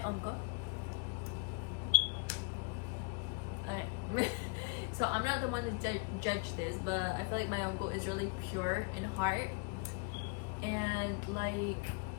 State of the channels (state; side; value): quieter; right; 31.4 dB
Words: uncle. Alright. So I'm not the one to judge this, but I feel like my uncle is really pure in heart. And like,